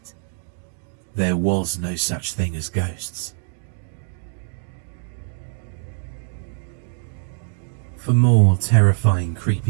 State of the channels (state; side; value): silent; left; digital silence